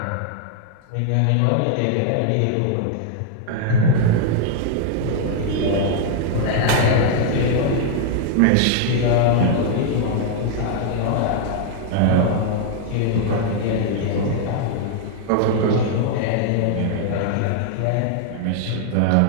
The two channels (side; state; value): both; different; correlation 0.00